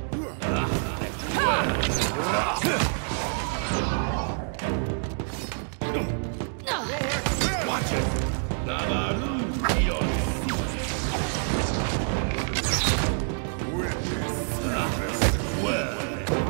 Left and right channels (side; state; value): left; silent; 57 dB below the other